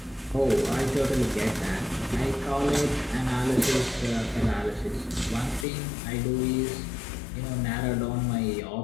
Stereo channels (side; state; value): right; drops out; at 5.7 s